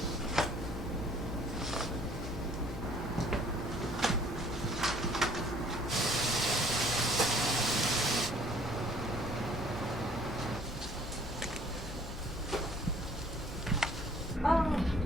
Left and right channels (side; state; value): left; noise; hum, 12 dB below the sound